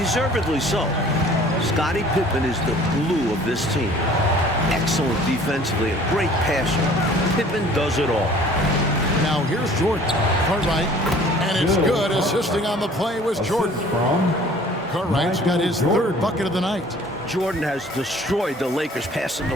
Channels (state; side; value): normal; both; correlation 0.51